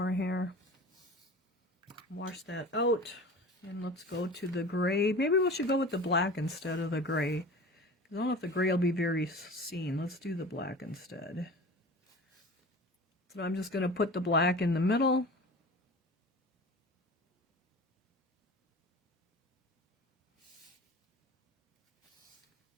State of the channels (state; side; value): normal; both; correlation 0.37